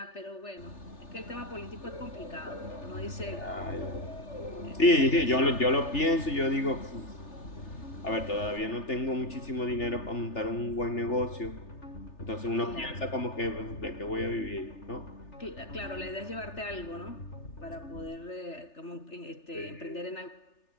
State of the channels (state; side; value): late; right; 3.4 ms